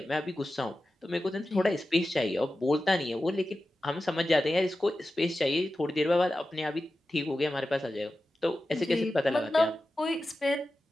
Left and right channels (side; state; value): both; normal; correlation 0.93